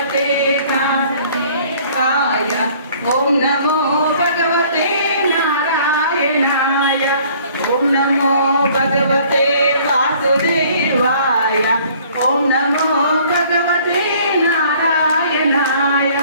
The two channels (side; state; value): both; inverted; correlation -0.56